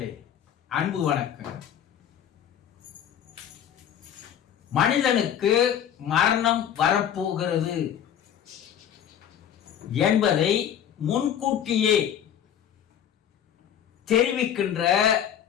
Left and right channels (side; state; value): right; quieter; 9.5 dB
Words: அன்பு வணக்கம். மனிதனுக்கு மரணம் வரப்போகிறது என்பதை முன்கூட்டியே தெரிவிக்கின்ற